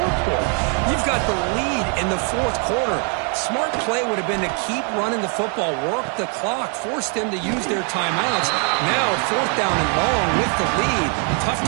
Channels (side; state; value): left; quieter; 39.9 dB